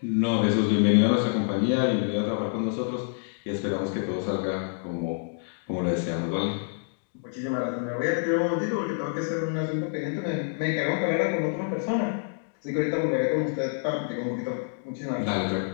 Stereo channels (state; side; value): silent; right; digital silence